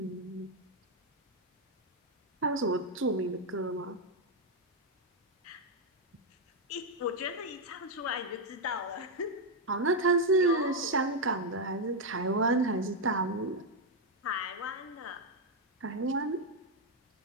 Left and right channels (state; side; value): normal; both; correlation 0.02